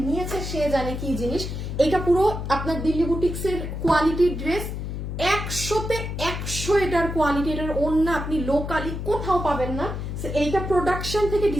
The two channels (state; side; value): noise; left; hum, 5 dB below the sound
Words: নিয়েছে সে জানে কি জিনিস। এটা পুরো আপনার দিল্লি বুটিক্স এর কোয়ালিটির ড্রেস, 100-তে 100 এটার কোয়ালিটি। এটার অন্য আপনি লোকালি কোথাও পাবেন না। এইটা প্রোডাকশন থেকে